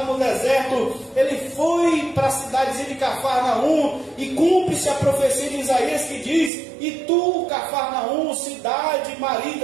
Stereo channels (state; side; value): drops out; left; at 6.5 s